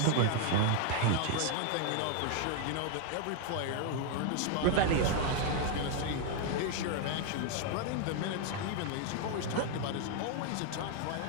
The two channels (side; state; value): both; different; correlation 0.01